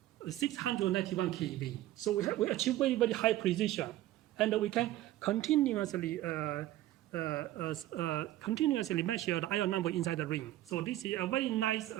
691 keV. So we achieve very, very high precision. And we can continuously measure the ion number inside the ring. So this is a very nice,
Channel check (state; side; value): quieter; left; 14.8 dB